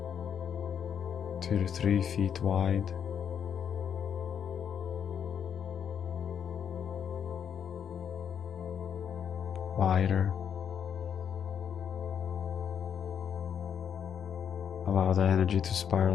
2 to 3 feet wide. Wider. Allow the energy to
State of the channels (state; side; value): quieter; right; 8.0 dB